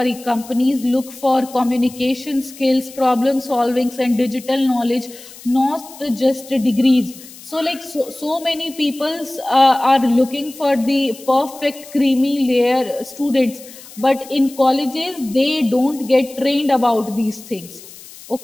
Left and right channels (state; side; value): noise; left; hiss, 18 dB below the sound